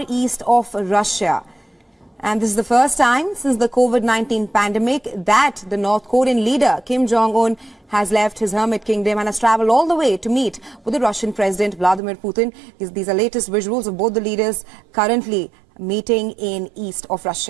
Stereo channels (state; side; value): drops out; left; at 12.0 s